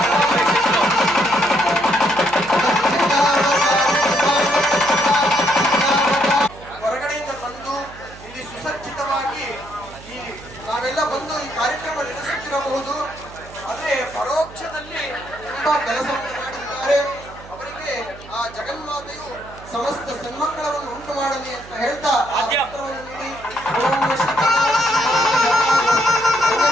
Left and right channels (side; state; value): right; noise; hum, 18 dB below the sound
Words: ಹೊರಗಡೆಯಿಂದ ಬಂದು ಇಲ್ಲಿ ಸುಸಜ್ಜಿತವಾಗಿ ನಾವೆಲ್ಲ ಬಂದು ಈ ಕಾರ್ಯಕ್ರಮ ನಡೆಸುತ್ತಿರಬಹುದು. ಆದ್ರೆ ಪರೋಕ್ಷದಲ್ಲಿ ತುಂಬಾ ಕೆಲಸವನ್ನು ಮಾಡಿದ್ದಾರೆ. ಅವರಿಗೆ ಆ ಜಗನ್ಮಾತೆಯು ಸಮಸ್ತ ಸನ್ಮಂಗಳವನ್ನು ಉಂಟು ಮಾಡಲಿ ಅಂತ ಹೇಳ್ತಾ ಆ ಪತ್ರವನ್ನು ನೀಡಿ